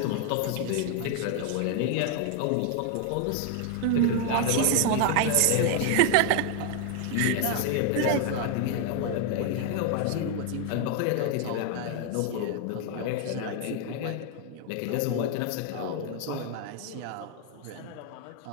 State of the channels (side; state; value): both; different; correlation 0.00